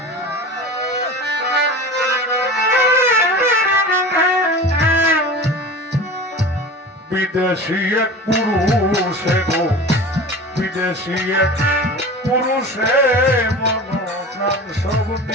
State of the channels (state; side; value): normal; both; correlation 0.34